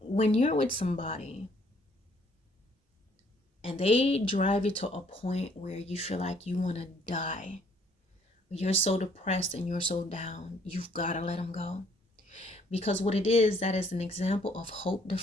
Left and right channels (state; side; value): normal; both; correlation 0.64